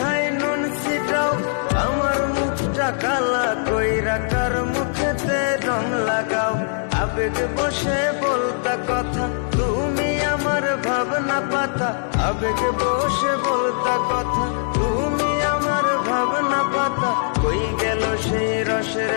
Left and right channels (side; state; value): right; silent; digital silence